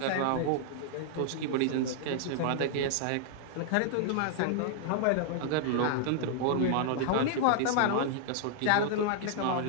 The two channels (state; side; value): different; both; correlation -0.01